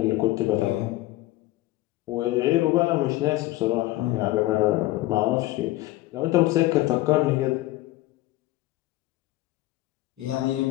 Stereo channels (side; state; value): right; quieter; 17.5 dB